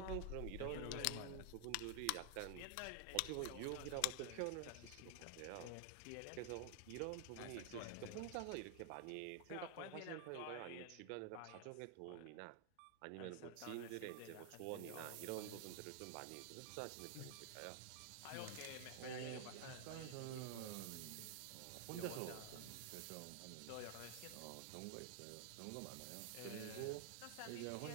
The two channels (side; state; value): both; different; correlation 0.00